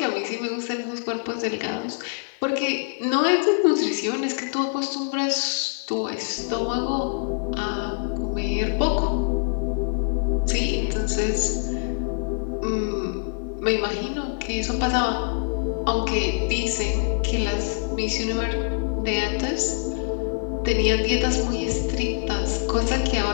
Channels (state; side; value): silent; right; 59 dB below the other